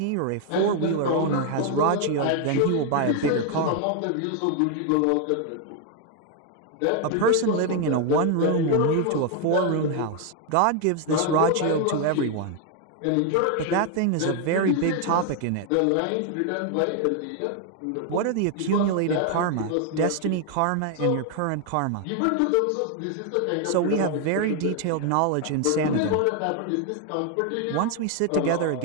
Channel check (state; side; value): different; both; correlation 0.01